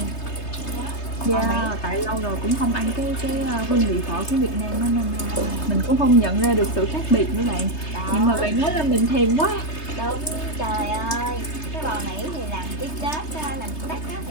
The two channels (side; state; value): right; late; 3.3 ms